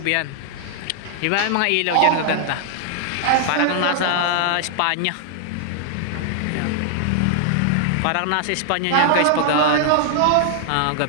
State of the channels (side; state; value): both; different; correlation 0.00